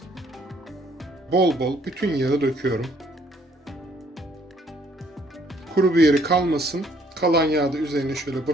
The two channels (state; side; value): normal; both; correlation 0.64